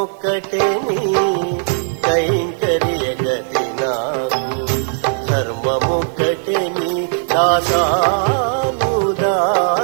నీ కైంకర్య గతి నాకు, ధర్మముక్కటే నీ దాసానుదాస్యము.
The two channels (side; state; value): left; silent; 68 dB below the other